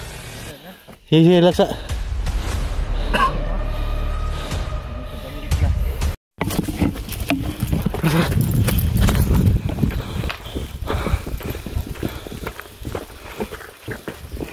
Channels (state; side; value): identical; both; correlation 1.00